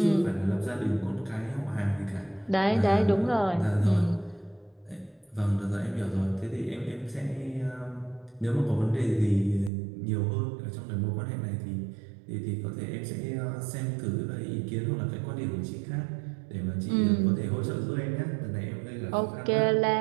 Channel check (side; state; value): left; drops out; at 9.7 s